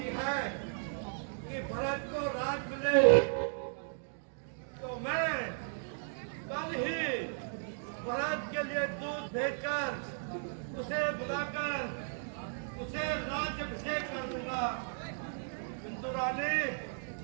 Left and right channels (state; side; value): silent; left; digital silence